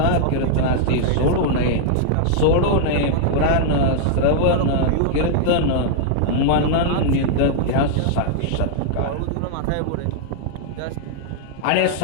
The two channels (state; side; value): different; both; correlation -0.01